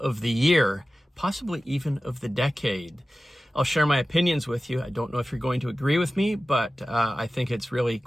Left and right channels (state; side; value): normal; both; correlation 0.95